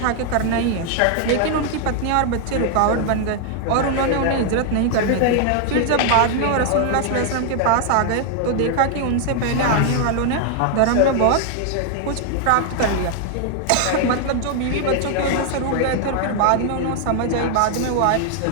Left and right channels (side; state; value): both; different; correlation 0.00